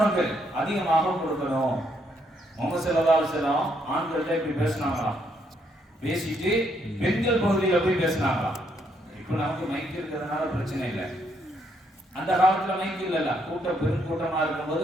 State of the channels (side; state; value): both; normal; correlation 0.73